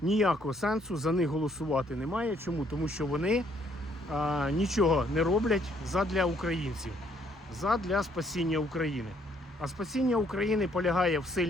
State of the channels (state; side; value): normal; both; correlation 0.67